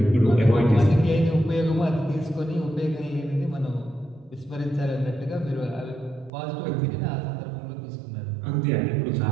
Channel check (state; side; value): drops out; left; at 6.3 s